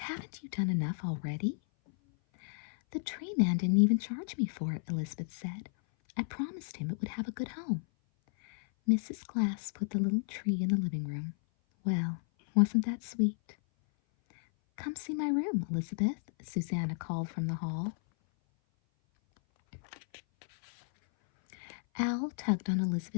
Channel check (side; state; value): right; silent; 56 dB below the other